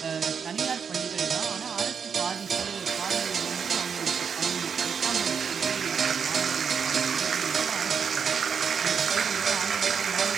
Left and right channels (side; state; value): left; quieter; 6.6 dB